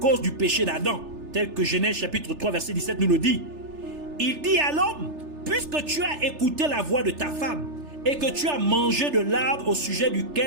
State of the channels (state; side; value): late; left; 3.3 ms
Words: du péché d'Adam, tel que Genèse chapitre 3 verset 17 nous le dit. Il dit à l'homme, puisque tu as écouté la voix de ta femme et que tu as mangé de l'arbre au sujet